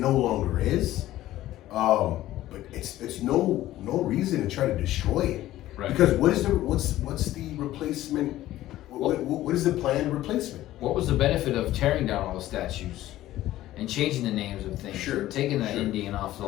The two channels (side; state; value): right; quieter; 14.8 dB